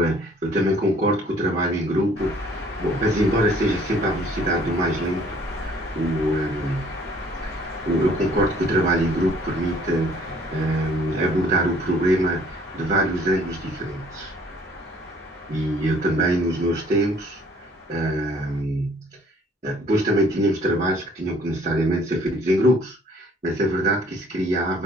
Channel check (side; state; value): both; normal; correlation 0.58